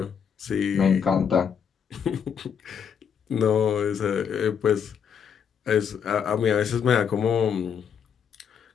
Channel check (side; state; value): right; quieter; 7.5 dB